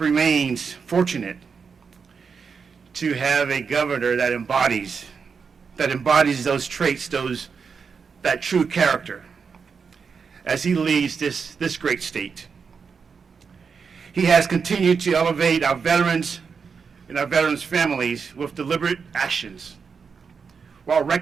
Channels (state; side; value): quieter; left; 5.7 dB